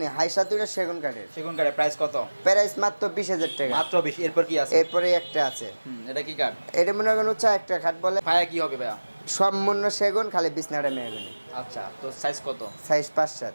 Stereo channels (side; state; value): both; inverted; correlation -1.00